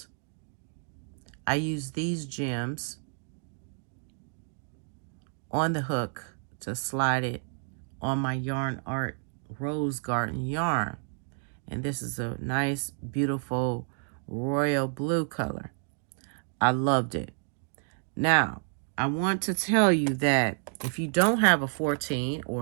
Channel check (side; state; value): left; silent; 58 dB below the other